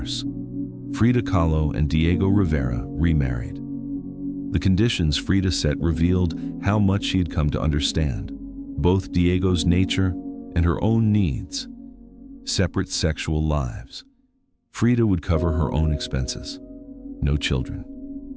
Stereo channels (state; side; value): identical; both; correlation 1.00